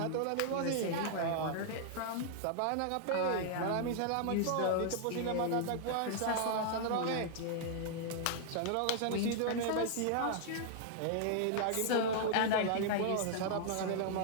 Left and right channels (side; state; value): both; different; correlation -0.01